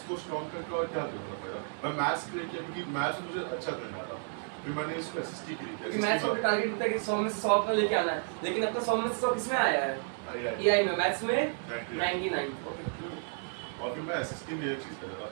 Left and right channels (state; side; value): silent; left; 56 dB below the other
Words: स्ट्रॉन्ग करके और क्या करूँगा मेरा, मैं मैथ्स क्रिएट किया क्योंकि मैथ्स मुझे अच्छा करना था, फिर मैंने इसको एसएसटी क्रिएट क्योंकि किया। मैथ्स में टारगेट होता है कि 100 में से 100 अपना लेके आना है, लेकिन अपना 100 में से 100 किसमें आया है? एआई में, मैथ्स में 99। ओके, और फिर मैं एसएसटी में ये चीज़ कर रहा